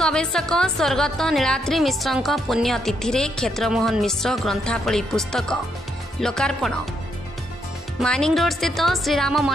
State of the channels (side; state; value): both; normal; correlation 0.76